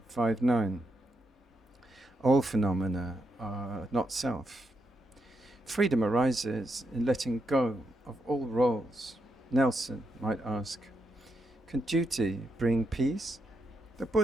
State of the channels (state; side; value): normal; both; correlation 0.82